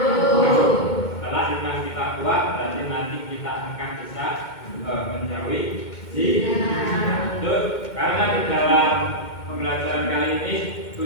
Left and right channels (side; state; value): right; late; 2.1 ms